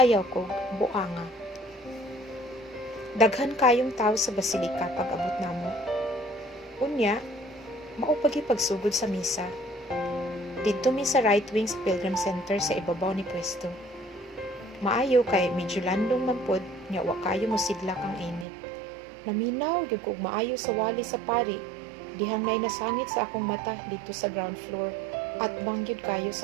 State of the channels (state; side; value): drops out; left; at 18.4 s